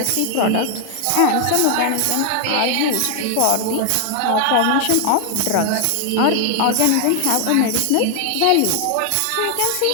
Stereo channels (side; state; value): both; different; correlation 0.00